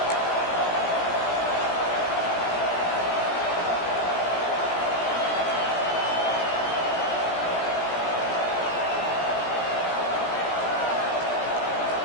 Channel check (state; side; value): late; right; 17 ms